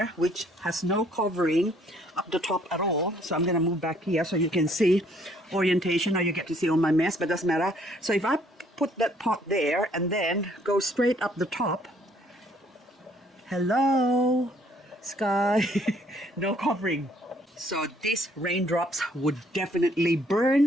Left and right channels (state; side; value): normal; both; correlation 0.64